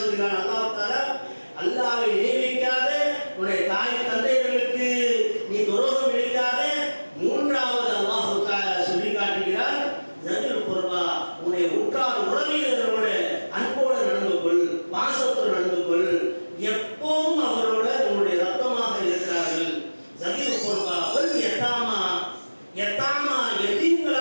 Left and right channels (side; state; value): both; inverted; correlation -1.00